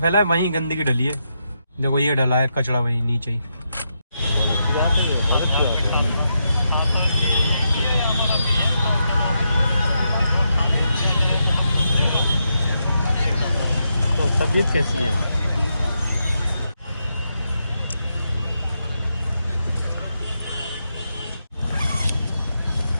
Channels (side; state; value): both; inverted; correlation -0.83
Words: वहीं गंदगी डली है। देखो ये डला है कचरा वहीं नीचे ही। तो तबीयत कैसी है?